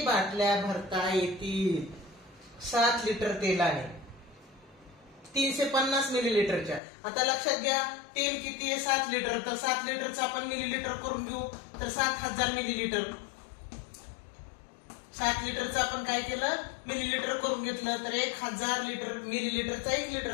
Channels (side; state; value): right; drops out; at 6.8 s